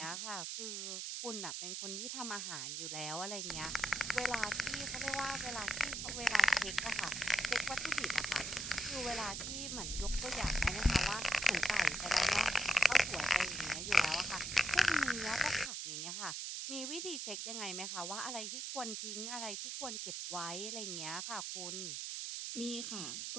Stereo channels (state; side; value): noise; right; hiss, 4 dB below the sound